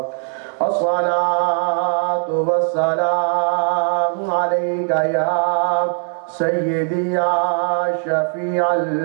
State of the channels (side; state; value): left; silent; 57 dB below the other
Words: الصلاة والسلام عليك يا سيدي يا شفيع